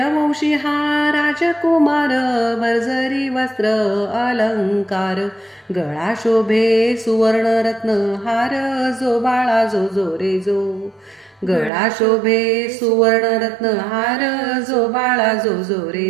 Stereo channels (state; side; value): drops out; left; at 11.7 s